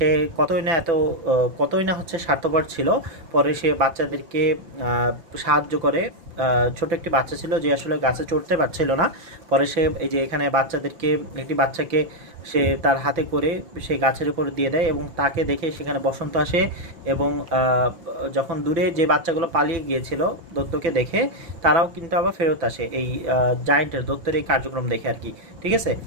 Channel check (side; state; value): left; late; 5.9 ms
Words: কতই না হচ্ছে স্বার্থপর ছিল। পরে সে বাচ্চাদেরকে সাহায্য করে, ছোট একটি বাচ্চা ছিল যে আসলে গাছে চড়তে পারছিল না, পরে সে এই যে এখানে একটি বাচ্চাকে সে তার হাতে করে সে গাছের উপর দিয়ে দেয়, এবং তাকে দেখে সেখানে বসন্ত আসে, এবং যখন দূরে যে বাচ্চাগুলো পালিয়ে গিয়েছিল দত্তকে দেখে, তারাও কিন্তু আবার ফেরত আসে এই জায়ান্টের দত্তের এই কার্যক্রম দেখে আর কি, ঠিক আছে।